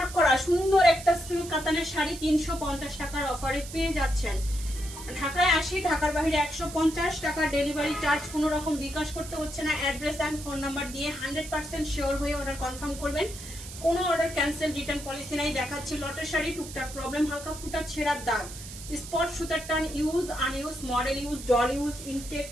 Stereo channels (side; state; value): right; noise; hiss, 13 dB below the sound